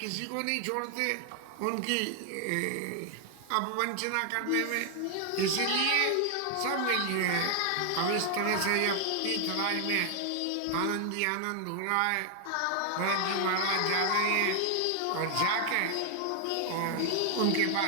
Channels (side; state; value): both; different; correlation 0.00